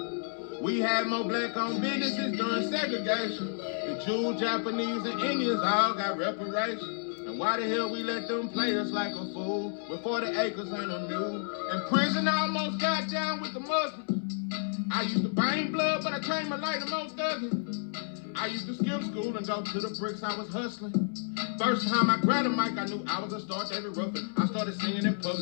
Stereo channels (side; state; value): right; silent; 57 dB below the other